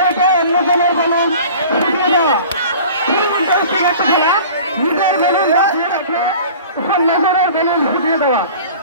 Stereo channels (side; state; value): both; inverted; correlation -0.43